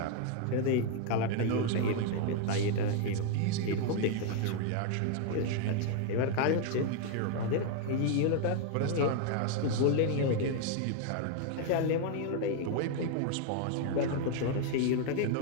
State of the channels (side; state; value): both; different; correlation 0.00